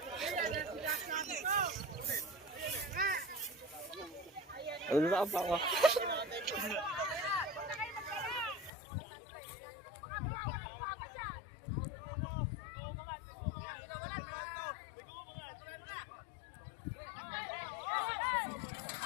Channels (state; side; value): drops out; right; at 8.7 s